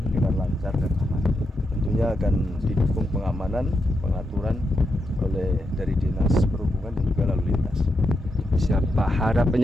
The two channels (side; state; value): both; normal; correlation 0.84